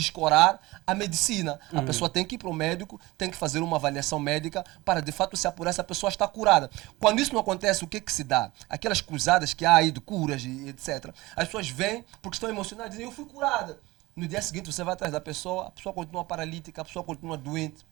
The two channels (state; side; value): quieter; left; 20.4 dB